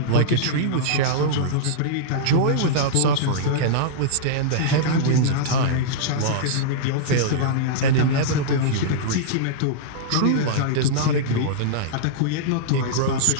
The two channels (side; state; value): both; different; correlation -0.02